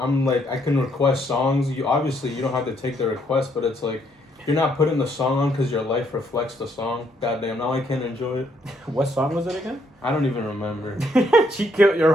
like, I can request songs. You don't have to take the request, but it's like, you're not putting the song on because your life reflects the song. Goddamn, now I can't enjoy it. What song was it again? I don't even remember. She killed your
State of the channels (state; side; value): normal; both; correlation 0.71